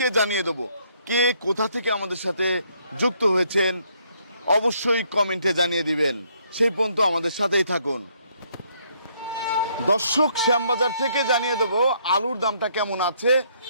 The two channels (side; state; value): both; inverted; correlation -0.69